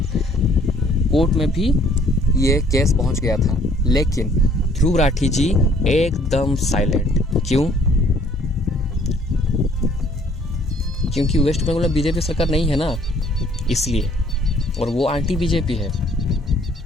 कोर्ट में भी ये केस पहुँच गया था। लेकिन ध्रुव राठी जी एकदम साइलेंट। क्यों? क्योंकि वेस्ट बंगाल में बीजेपी सरकार नहीं है ना, इसलिए, और वो एंटी बीजेपी है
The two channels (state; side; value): normal; both; correlation 0.60